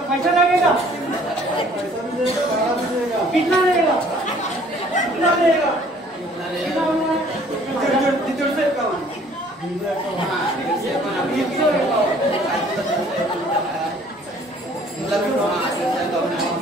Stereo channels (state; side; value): normal; both; correlation 0.56